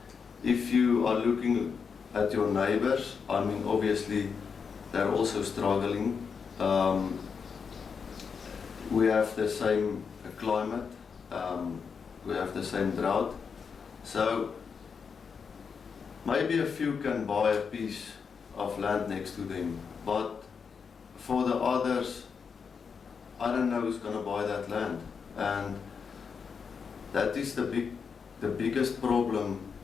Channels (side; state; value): right; quieter; 6.0 dB